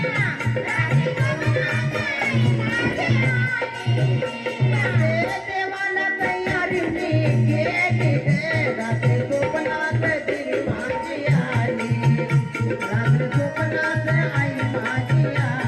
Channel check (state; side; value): identical; both; correlation 1.00